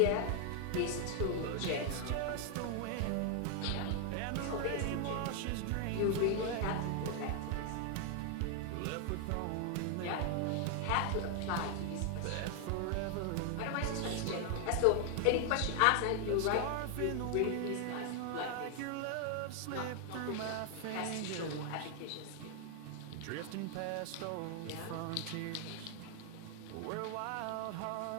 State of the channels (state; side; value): different; both; correlation 0.00